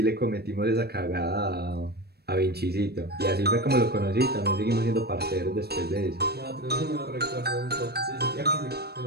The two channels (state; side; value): late; left; 0.47 ms